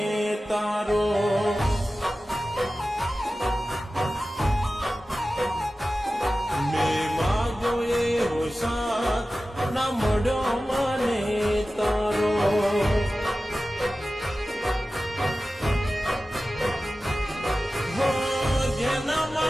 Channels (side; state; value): both; normal; correlation 0.95